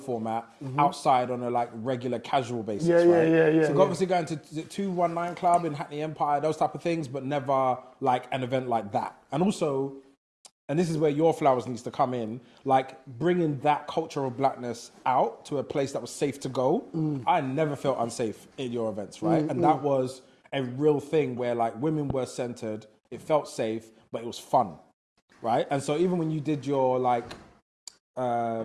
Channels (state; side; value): identical; both; correlation 1.00